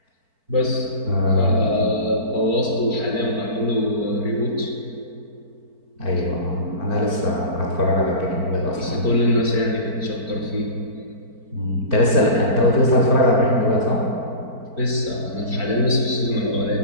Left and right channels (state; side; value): late; left; 4.5 ms